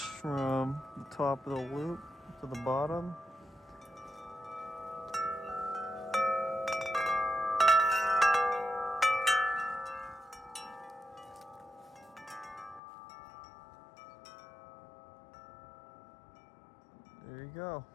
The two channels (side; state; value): right; drops out; at 12.8 s